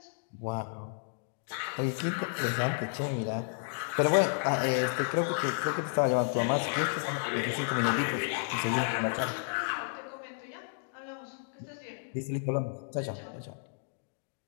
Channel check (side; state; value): right; silent; digital silence